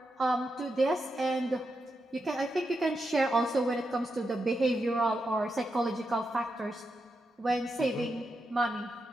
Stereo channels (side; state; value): both; normal; correlation 0.86